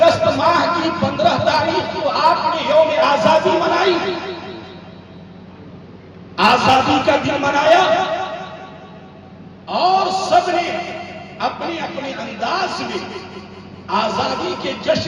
ماہ کی 15 تاریخ کو آپ نے یوم آزادی منائی، آزادی کا دن منایا، اور سب نے اپنے اپنے انداز میں آزادی کے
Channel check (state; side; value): identical; both; correlation 1.00